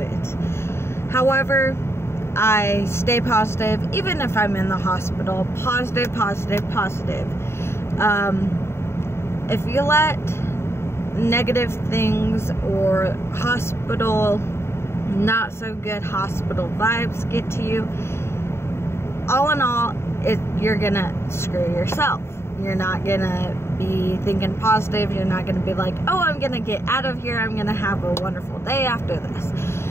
However, I stay positive, even if I'm in the hospital. Positive, positive, positive. If you let negative things or not so good hospital vibes get to you, all in all, you're gonna screw yourself. You're not gonna be thinking positive. You're not gonna be like, oh, I'm gonna get out of here, I'm gonna have a wonderful day after this.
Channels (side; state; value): right; late; 0.12 ms